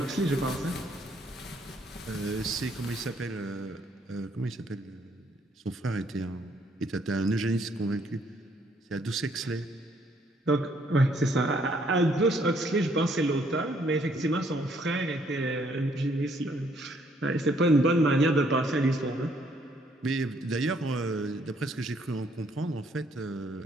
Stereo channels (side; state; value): both; normal; correlation 0.67